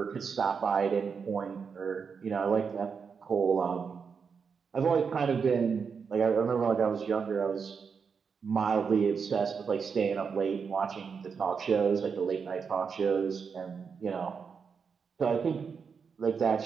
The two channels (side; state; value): left; quieter; 5.9 dB